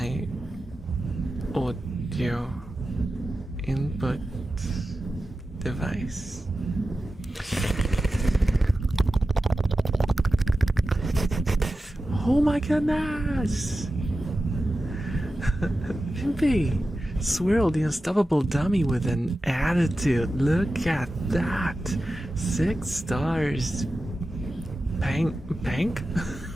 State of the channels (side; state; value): both; normal; correlation 0.93